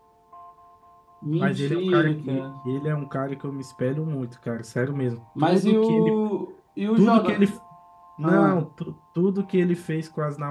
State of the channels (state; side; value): identical; both; correlation 1.00